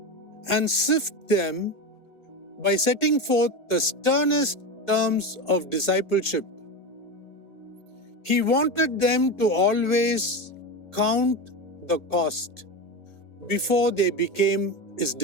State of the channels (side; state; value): right; late; 1.8 ms